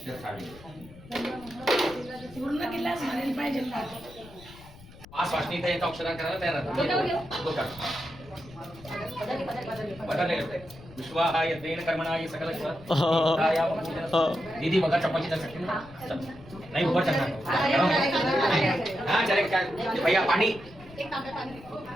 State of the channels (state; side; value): noise; left; rumble, 20 dB below the sound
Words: पूर्ण किल्लाच म्हणायला पाहिजे ना. पाच वाजता इथे येतं अक्षरा करायला तयार विश्वाहा यज्ञेन कर्मणाय सकल दीदी बघा चपाती कर सकते नहीं ऊपर चलना. हाँ चले क्या भैया पानी